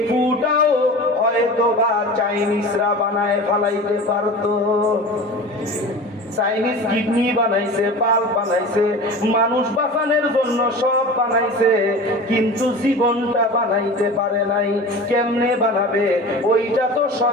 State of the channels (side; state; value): both; normal; correlation 0.35